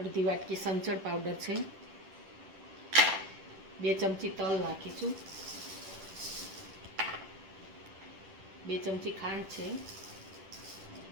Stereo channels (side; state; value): left; late; 10 ms